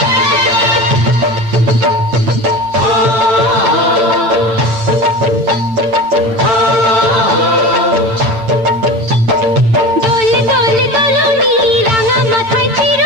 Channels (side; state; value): left; late; 8.9 ms